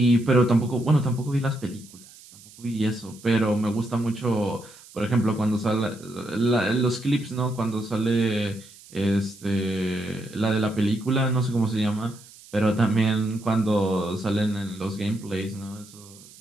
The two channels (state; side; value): noise; right; hiss, 22 dB below the sound